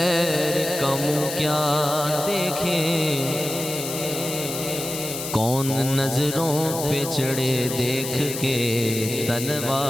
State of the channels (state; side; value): noise; left; hiss, 7 dB below the sound